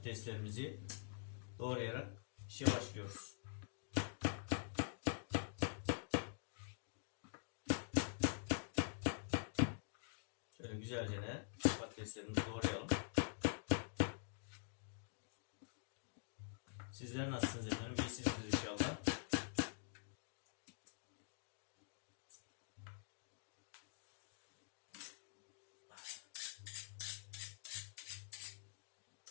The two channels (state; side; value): silent; right; digital silence